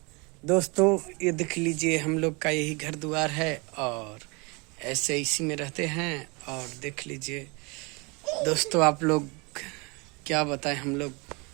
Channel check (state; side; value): quieter; left; 29.0 dB